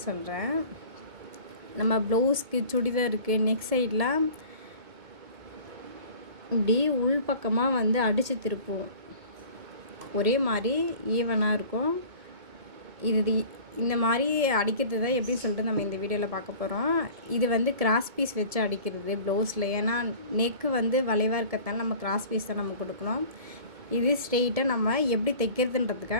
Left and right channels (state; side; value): late; left; 2.2 ms